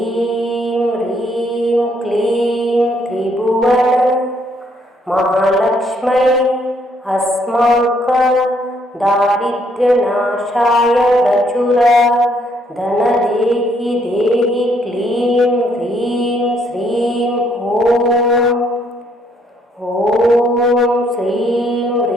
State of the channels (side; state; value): both; normal; correlation 0.69